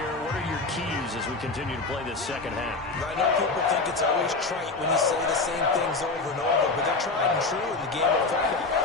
What are your keys as we continue to play this second half? I know people think it's always trite when you say the same things over and over, but they're tried and true in the game of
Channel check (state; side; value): quieter; right; 3.7 dB